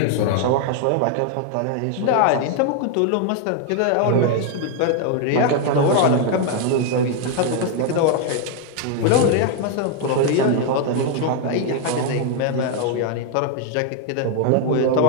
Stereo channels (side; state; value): both; different; correlation 0.00